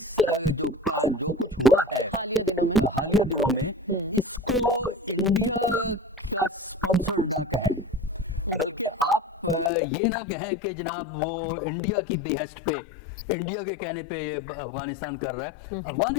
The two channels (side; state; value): right; drops out; at 9.7 s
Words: जो कुछ हुआ है हालिया दिनों में इसको इंडिया का स्पॉन्सर ना कहें, बल्कि आप ये ना कहें कि जनाब वो इंडिया की बेहस्ट पे, इंडिया के कहने पे अफगानिस्तान कर रहा है।